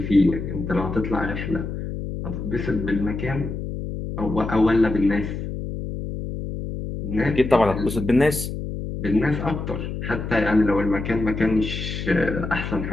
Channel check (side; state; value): left; noise; hum, 6 dB below the sound